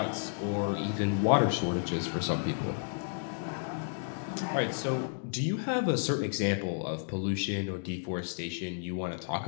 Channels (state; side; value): silent; right; digital silence